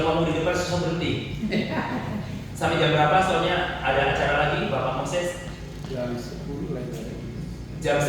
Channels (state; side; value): identical; both; correlation 1.00